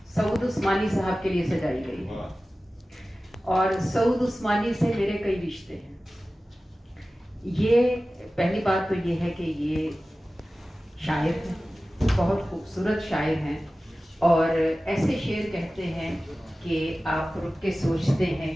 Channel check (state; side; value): normal; both; correlation 0.96